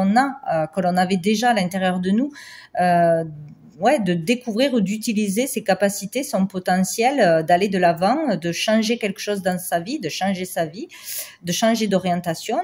a, que l'on avait déjà à l'intérieur de nous, de découvrir ou d'utiliser ses capacités, son potentiel, d'aller de l'avant, de changer quelque chose dans sa vie, de changer sa vie, de changer d'orientation,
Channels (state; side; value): identical; both; correlation 1.00